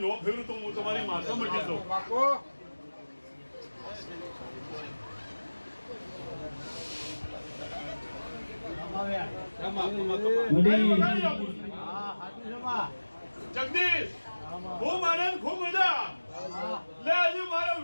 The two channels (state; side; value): inverted; both; correlation -1.00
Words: નો ફેરું તો હું તમારી માતા મટી દઉં જગદીશ ખૂબ આનંદ ખૂબ મજા લે હજુ મારો